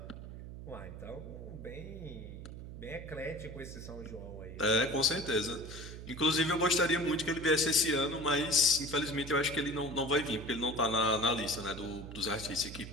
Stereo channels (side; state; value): right; noise; hum, 11 dB below the sound